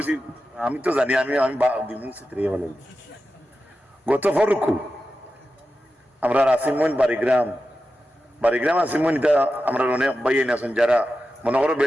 আমি তো জানি আমি আমি গত ফরুকু আমরা আসিমন বাড়িগ্রাম আসিমন, এটা আমরা অনেক বাইন আছেন যারা মনে করো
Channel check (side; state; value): both; normal; correlation 0.92